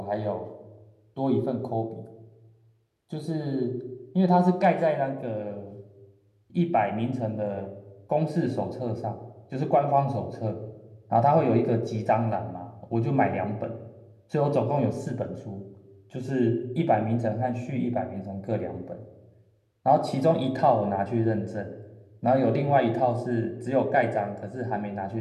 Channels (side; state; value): both; identical; correlation 1.00